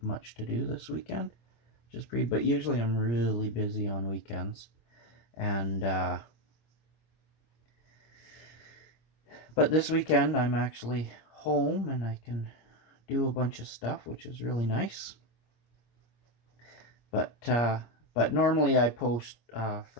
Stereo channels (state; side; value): late; right; 26 ms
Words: much to do this weekend. But usually I'm really busy on weekends. And but this weekend I'm actually home and I can do a bunch of stuff, which is really nice. But But normally I post